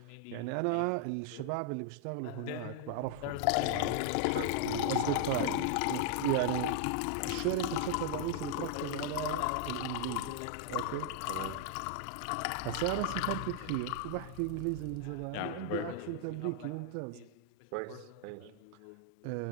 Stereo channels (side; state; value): both; different; correlation 0.00